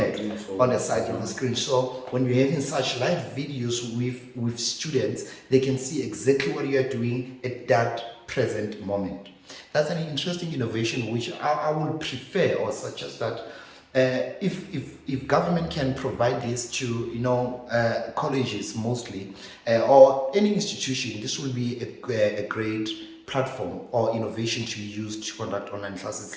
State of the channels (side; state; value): both; identical; correlation 1.00